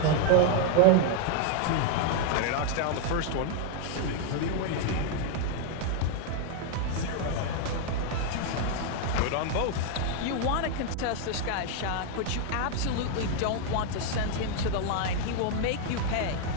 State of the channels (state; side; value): different; both; correlation 0.00